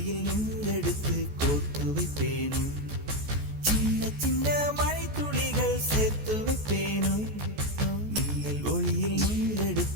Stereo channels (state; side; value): late; left; 14 ms